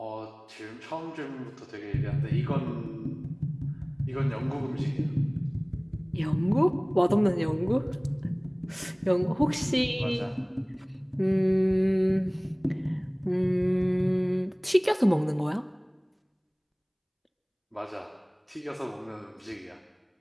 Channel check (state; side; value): identical; both; correlation 1.00